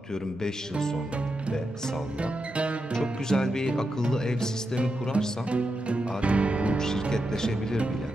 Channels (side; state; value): both; normal; correlation 0.87